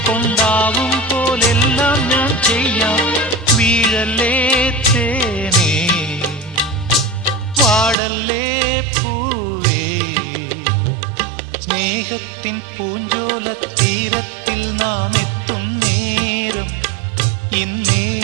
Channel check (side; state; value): left; drops out; at 8.0 s